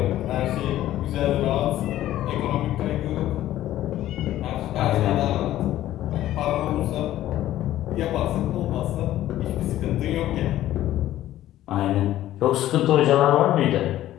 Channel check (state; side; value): quieter; right; 13.7 dB